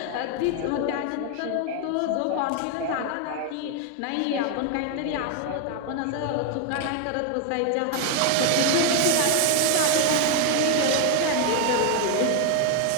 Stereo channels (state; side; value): different; both; correlation 0.00